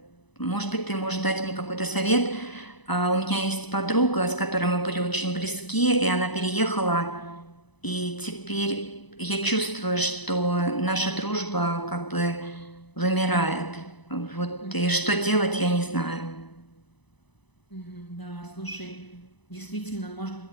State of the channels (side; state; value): right; late; 1.0 ms